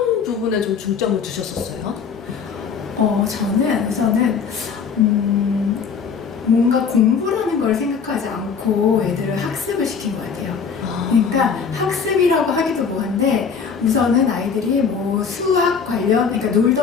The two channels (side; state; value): right; quieter; 6.2 dB